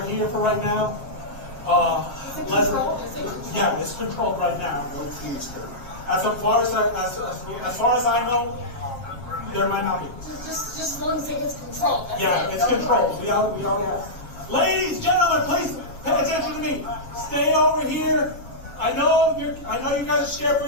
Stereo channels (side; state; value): right; late; 7.4 ms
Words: here for right now. Yeah, it's controlled right now. As far as I know, there might not be. Just as long as it gets controlled. Yeah, it's controlled. We all have. Ladies, gentlemen, please pay attention to me. Stay over here. I know you guys are scared for